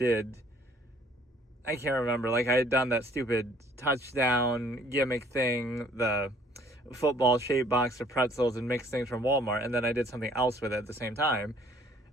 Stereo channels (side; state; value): both; normal; correlation 0.58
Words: can't remember, like I had done that stupid touchdown gimmick thing, the football-shaped box of pretzels and mixed things from Walmart, and then I did something else with it at the same time,